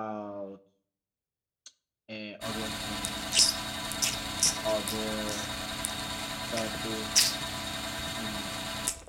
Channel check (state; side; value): identical; both; correlation 1.00